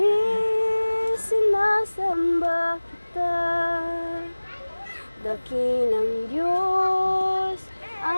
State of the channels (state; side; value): inverted; both; correlation -1.00